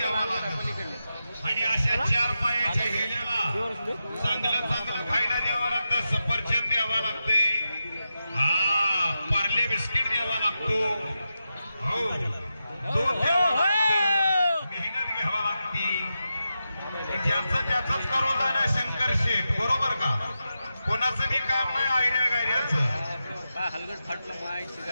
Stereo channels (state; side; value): inverted; both; correlation -0.89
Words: लागत. आणि अशा चार पायाच्या हेल्याला चांगलं चांगलं खायला द्यावं लागतं. सफरचंद द्यावा लागते, हा पार्ले बिस्किट द्यावा लागतो, हो दूध द्यावं लागतं, मेहनत घ्यावा लागते. ज्याचं त्याचंच करून जाणं शंकर शेठ, बरोबर का? कोणाचं बी काम नाही आयऱ्या गायऱ्याचं. हलगट फाटलं मायची